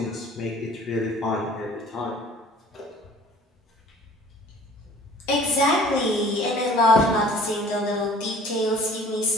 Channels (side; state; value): both; normal; correlation 0.50